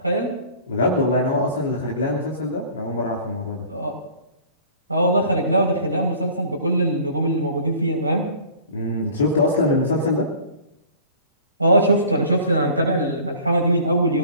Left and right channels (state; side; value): inverted; both; correlation -0.47